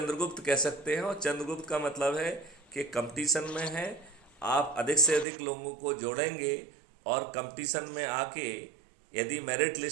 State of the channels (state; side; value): drops out; left; at 5.2 s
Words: कह सकते हैं, और चंद्रगुप्त का मतलब है कि कंपटीशन में है। आप अधिक से अधिक लोगों को जोड़ेंगे और कंपटीशन में आके यदि मेरिट